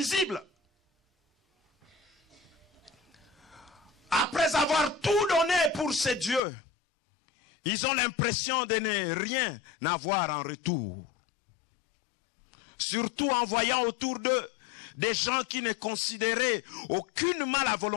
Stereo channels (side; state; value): right; drops out; at 6.4 s